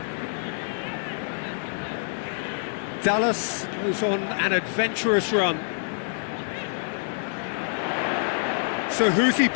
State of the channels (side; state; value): right; silent; 60 dB below the other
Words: Dallas goes on an adventurous run. So who's he